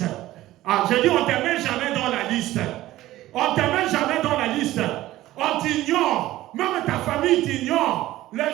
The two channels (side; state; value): left; quieter; 15.7 dB